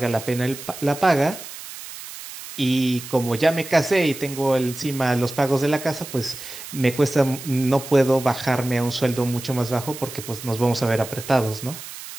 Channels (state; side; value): noise; right; hiss, 12 dB below the sound